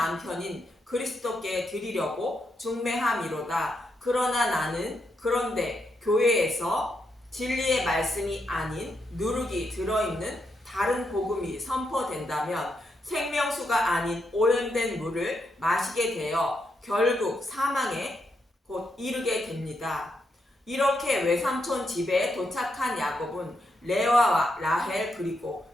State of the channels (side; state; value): both; normal; correlation 0.81